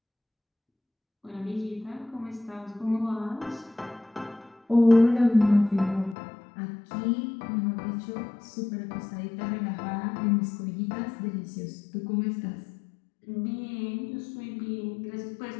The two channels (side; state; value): right; drops out; at 6.2 s